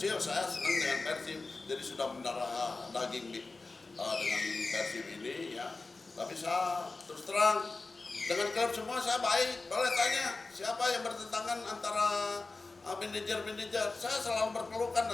saya senang dengan Persib, jadi sudah mendarah daging dengan Persib ini ya. Tapi saya terus terang dengan klub semua saya baik. Boleh tanya siapa yang bertentangan antara manajer, saya selalu berpelukan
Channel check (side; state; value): right; quieter; 3.6 dB